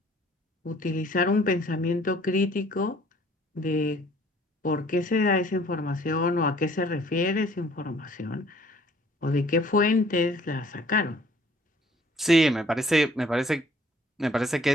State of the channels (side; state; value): both; normal; correlation 0.57